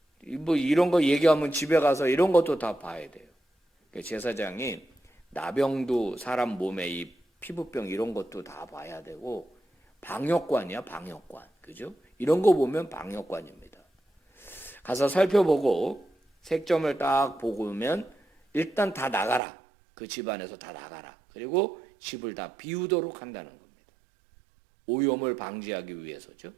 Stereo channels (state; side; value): drops out; left; at 19.4 s